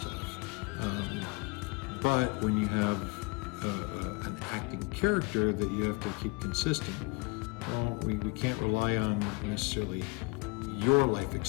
But when you have an acting character that you have to keep consistent, well, we can't rely on necessarily your life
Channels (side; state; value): right; quieter; 27.1 dB